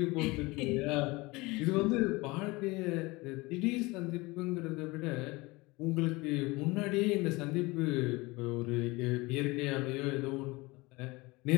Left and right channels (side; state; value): right; quieter; 23.1 dB